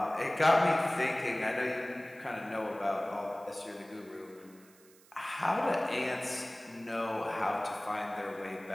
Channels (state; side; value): noise; right; hiss, 26 dB below the sound